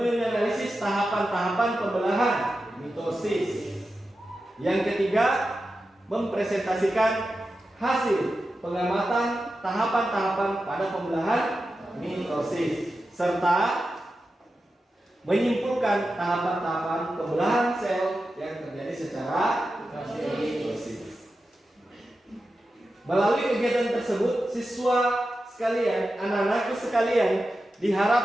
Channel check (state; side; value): normal; both; correlation 0.91